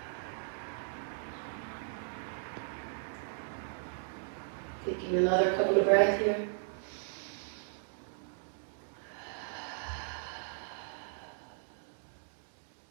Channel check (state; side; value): silent; left; digital silence